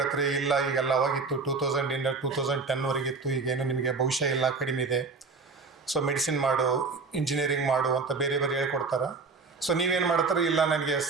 ಇಲ್ಲ ಈಗೆಲ್ಲ ಅವಾಗಿತ್ತು 2000 2010ವರೆಗಿತ್ತು, ಈಗೇನು ನಿಮಗೆ ಭವಿಷ್ಯ ಇಲ್ಲ, ಕಡಿಮೆ ಇದೆ, ಸೊ ಮೆಡಿಸಿನ್ ಮಾಡು, ಇಂಜಿನಿಯರಿಂಗ್ ಮಾಡು ಅಂತ ಬೇರೆ ಹೇಳ್ಕೊಡ್ತಾರೆ. ಸೊ ನೀವೇನು ಮಾಡ್ತಾರೆ, ಇಲ್ಲ ನನಗೆ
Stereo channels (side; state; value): left; quieter; 4.4 dB